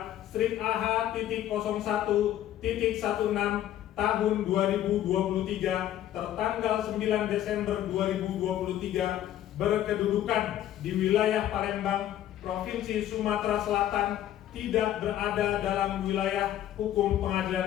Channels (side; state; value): right; quieter; 12.1 dB